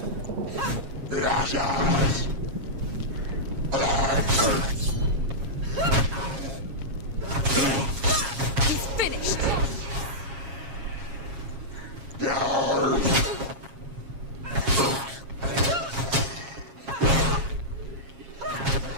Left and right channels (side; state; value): left; late; 7.4 ms